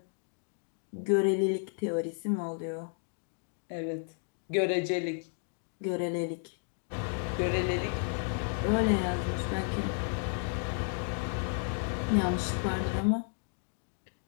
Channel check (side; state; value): right; silent; 56 dB below the other